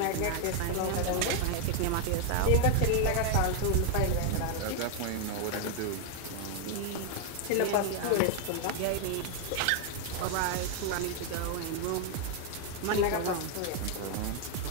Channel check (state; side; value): different; both; correlation 0.00